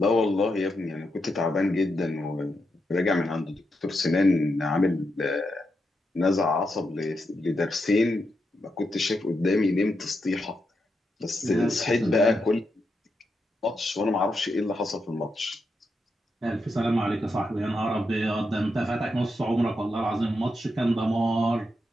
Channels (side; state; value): both; normal; correlation 0.84